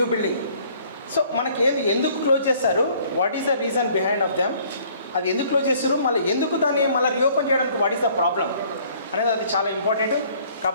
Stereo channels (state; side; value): inverted; both; correlation -0.58